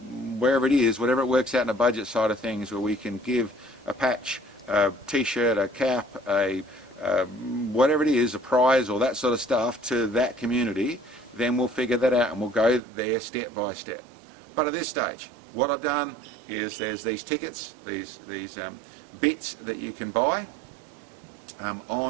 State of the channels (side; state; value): left; drops out; at 12.8 s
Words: wherever it is, whatever it works out in a budget side of things, where we can give a patch, a t-shirt, a cap, whatever it is, a prize or that sort of stuff to that community, then we'll figure that out and we'll go there step by step. But at this stage, what I've done is there's these tickets, these bits that you can buy